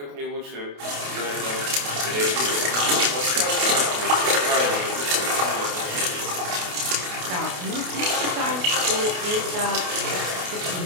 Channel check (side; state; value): left; late; 28 ms